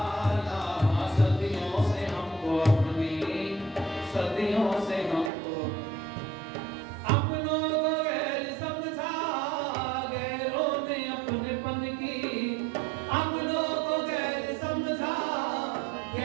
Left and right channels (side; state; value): left; drops out; at 5.3 s